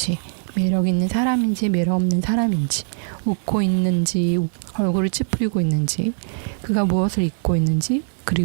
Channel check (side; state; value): left; silent; 65 dB below the other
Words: 매력 있는 사람인지 매력 없는 사람인지 웃고 있는지 얼굴을 찌푸리고 있는지 그가 무엇을 입고 있는지